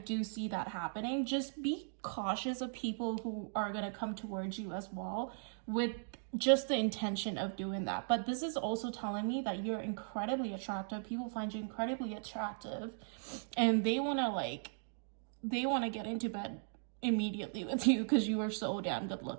see that happening. Just be cautious of people who are going to come towards you as well with just the intention of doing that. But this is also telling me that you're incredibly attractive. People find you incredibly attractive, and they want to get into bed immediately with you because you are so damn good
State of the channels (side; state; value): left; silent; digital silence